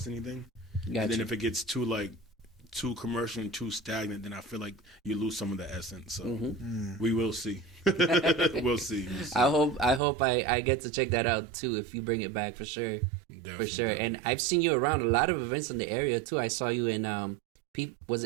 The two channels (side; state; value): left; drops out; at 10.0 s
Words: anything. Gotcha. And then if it gets too commercial and too stagnant, then I feel like you lose some of the essence. So we will see. We'll see. I hope I get to check that out too if you bring it back for sure. Definitely. For sure. And I've seen you around a lot of events in the area too. I saw you in was